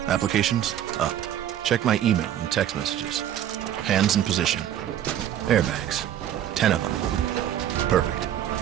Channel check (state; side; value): quieter; left; 10.9 dB